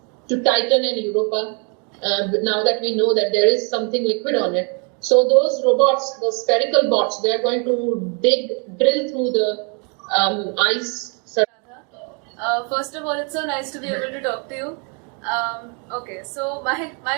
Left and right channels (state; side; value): quieter; left; 36.5 dB